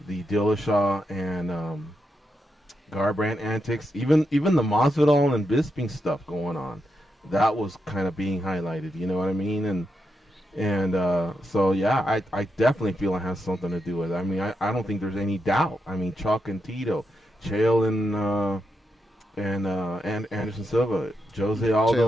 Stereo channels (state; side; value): normal; both; correlation 0.84